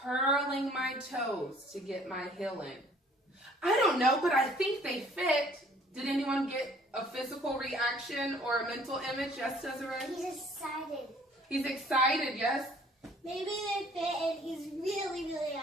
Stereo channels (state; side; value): normal; both; correlation 0.57